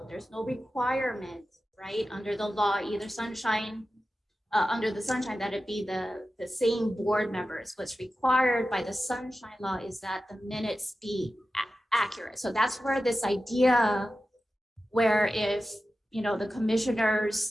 There's no requirement, right, under the law, either sunshine, under the sunshine, that it be the same board members. What's required by the sunshine law is that the minutes be accurate. So that's where this idea where if the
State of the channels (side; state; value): both; normal; correlation 0.93